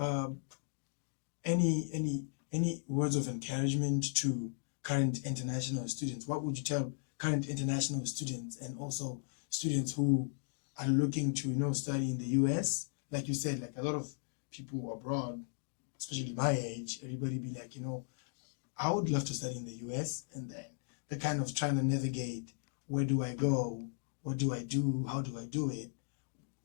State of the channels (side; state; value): right; silent; digital silence